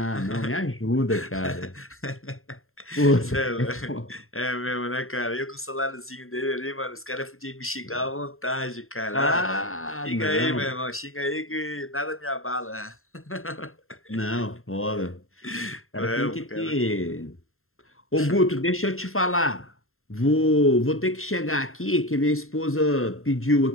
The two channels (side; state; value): right; late; 0.61 ms